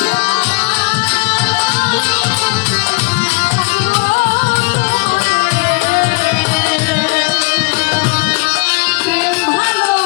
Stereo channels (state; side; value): quieter; right; 29.5 dB